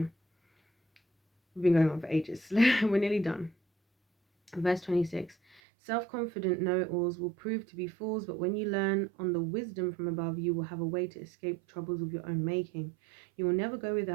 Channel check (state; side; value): drops out; left; at 5.6 s